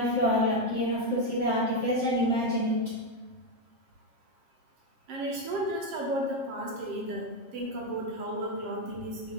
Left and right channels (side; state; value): left; late; 7.5 ms